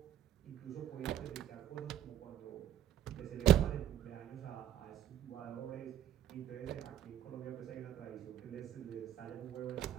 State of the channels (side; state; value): left; quieter; 11.0 dB